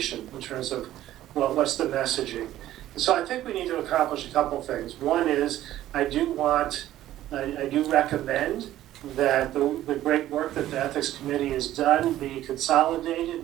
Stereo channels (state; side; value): quieter; left; 13.6 dB